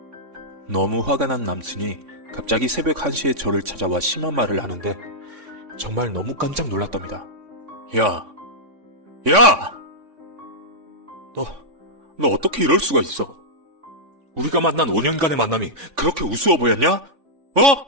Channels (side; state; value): left; late; 3.5 ms